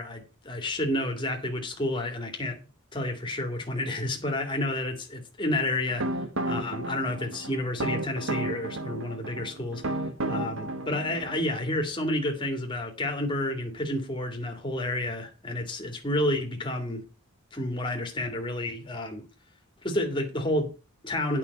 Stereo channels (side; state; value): both; normal; correlation 0.32